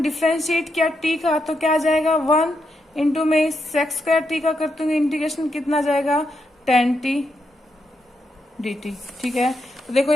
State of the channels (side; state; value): both; normal; correlation 0.82